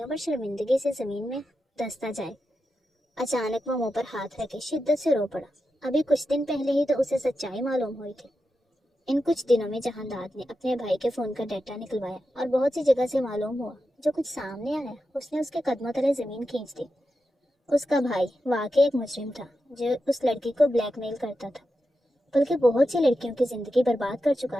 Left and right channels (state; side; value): normal; both; correlation 0.89